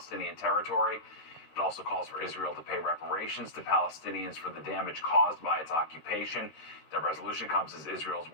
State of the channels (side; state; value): right; late; 13 ms